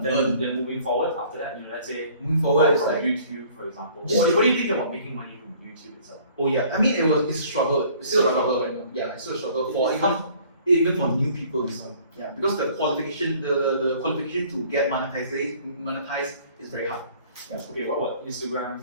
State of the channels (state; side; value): inverted; both; correlation -0.54